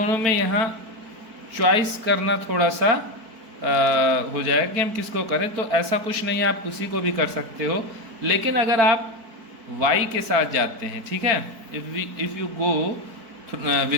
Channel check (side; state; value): left; late; 4.5 ms